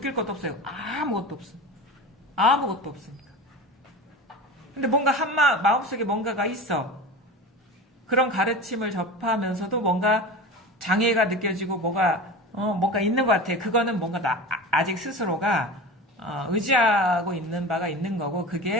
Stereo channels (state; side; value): normal; both; correlation 0.31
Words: 것도 없어요. 아무것도 없어. 아무것도 없으니까. 근데 뭔가 마음속에 뭔가가 있어. 그런 가르침을 접하면서도 뭔가 장애가 느껴지고 뭔가 있는 것 같아. 그거는 뭔가 아직 스스로가 의지하고 있는 바가 있는 거고